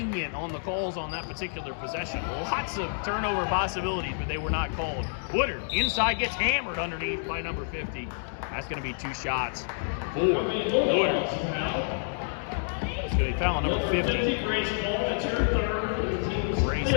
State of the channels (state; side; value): silent; right; digital silence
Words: on the calls on that particular possession. Lots of turnover possibilities, but they were not called. Woodard inside gets hammered underneath by number 50. That's going to be 2 shots for Woodard. It's going to be foul on number 50. Grace,